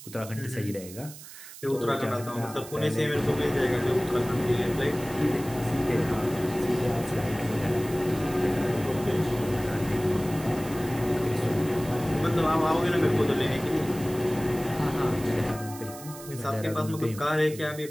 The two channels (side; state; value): right; noise; hiss, 15 dB below the sound